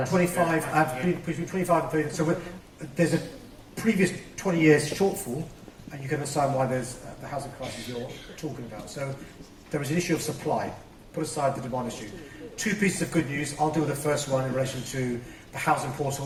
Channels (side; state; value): both; identical; correlation 1.00